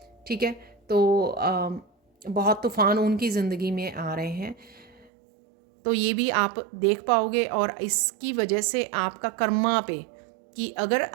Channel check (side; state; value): left; drops out; at 5.1 s